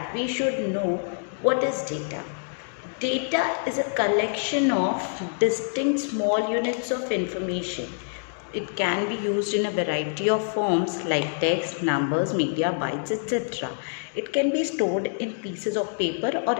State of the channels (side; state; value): right; silent; digital silence